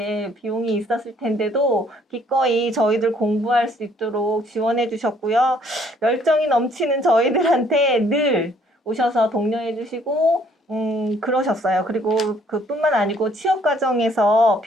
비용이 있었을 텐데도 기꺼이 저희들 공부할 수 있도록 지원해 주셨고요. 열정이 넘치는 저희들한테 늘 오셔서 독려해 주시고 그러셨어요. 그리고 그뿐만 아니고 취업 과정에서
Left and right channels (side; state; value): both; normal; correlation 0.63